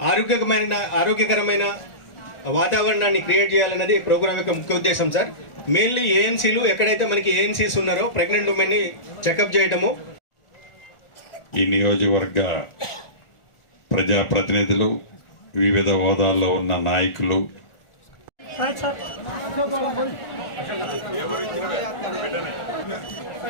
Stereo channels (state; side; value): late; right; 1.4 ms